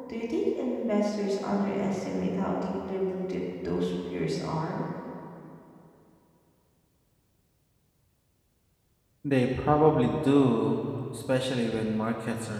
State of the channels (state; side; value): identical; both; correlation 1.00